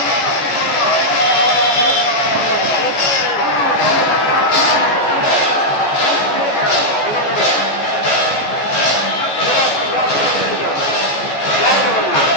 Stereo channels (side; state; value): right; late; 14 ms